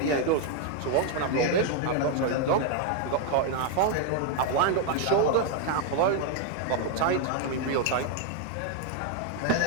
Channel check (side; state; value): both; different; correlation 0.00